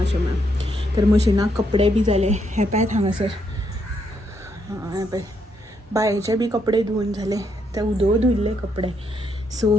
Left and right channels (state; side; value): normal; both; correlation 0.76